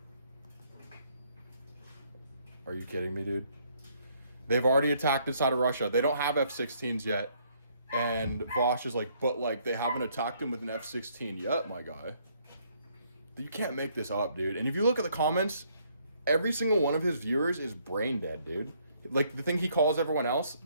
Are you kidding me, dude? They've already attacked inside of Russia. They don't have F-16s yet. And Vaush is like, but like, they haven't attacked him with an F-16 yet, my guy. You can't make this up, dude. And if you look at the comments, every single one of his viewers is brain dead, dude. Like, the thing he calls everyone else,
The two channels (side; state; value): both; inverted; correlation -0.68